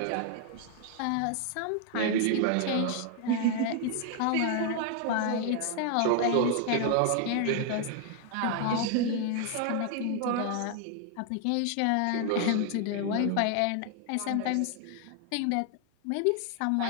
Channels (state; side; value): different; both; correlation 0.00